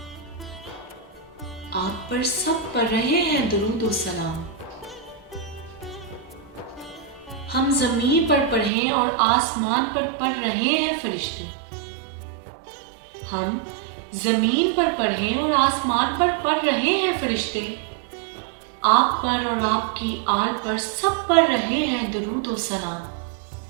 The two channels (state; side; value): drops out; left; at 8.7 s